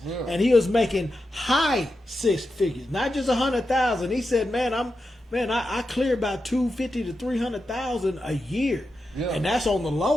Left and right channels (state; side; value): normal; both; correlation 0.89